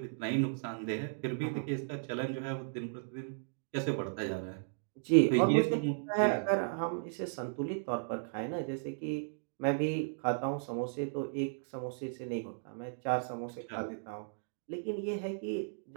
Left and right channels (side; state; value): left; silent; digital silence